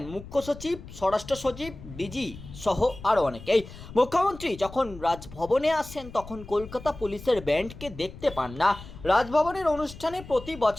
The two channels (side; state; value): left; noise; rumble, 15 dB below the sound